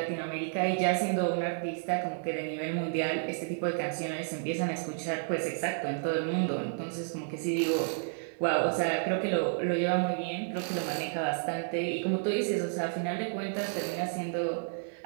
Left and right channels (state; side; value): silent; left; digital silence